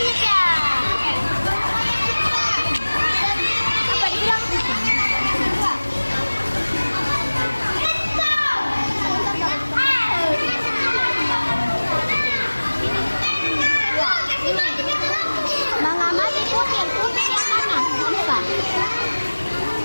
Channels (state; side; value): inverted; both; correlation -1.00